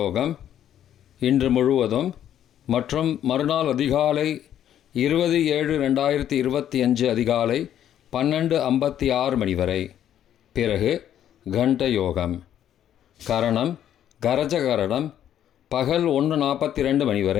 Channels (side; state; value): right; quieter; 10.6 dB